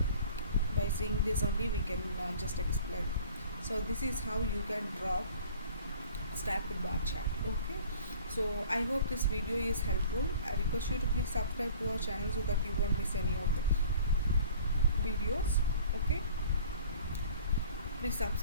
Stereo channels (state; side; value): inverted; both; correlation -0.49